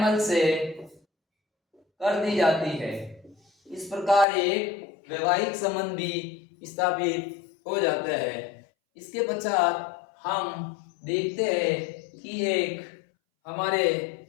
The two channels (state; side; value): drops out; right; at 4.2 s